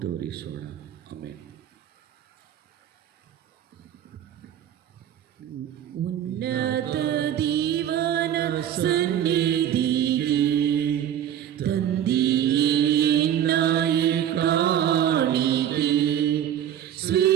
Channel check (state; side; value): quieter; left; 10.3 dB